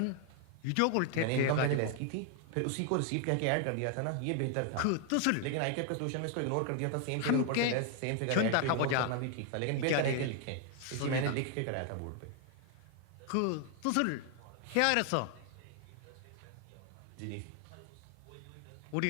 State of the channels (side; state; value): both; different; correlation 0.00